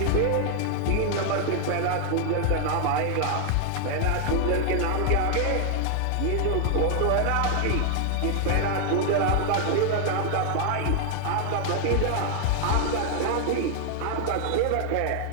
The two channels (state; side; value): different; both; correlation 0.00